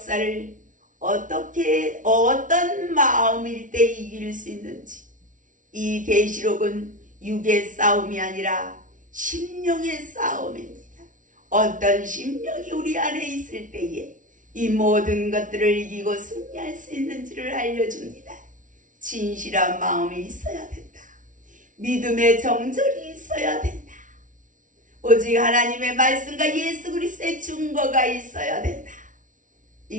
어떤 마음일 때 이길 수 있는지, 이 계시록은 육의 싸움이 아니라 심령의 싸움입니다. 어떤 심령이 우리 안에 있을 때에 이 모든 것들을 이기고 승리할 수 있는지를 알려줍니다. 진실한 마음이 있어야 된다. 믿음의 정절이 있어야 된다. 오직 하나님의 말씀과 예수 그리스도의 증거가 있어야 된다.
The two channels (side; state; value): left; late; 0.38 ms